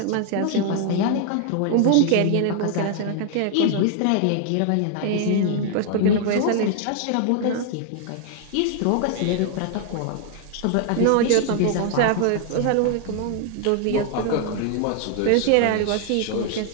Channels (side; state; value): both; different; correlation 0.00